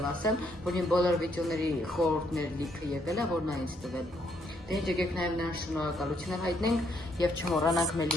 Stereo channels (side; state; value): both; normal; correlation 0.72